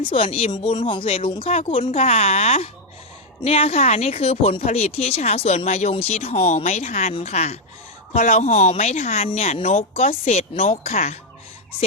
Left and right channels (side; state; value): both; normal; correlation 0.02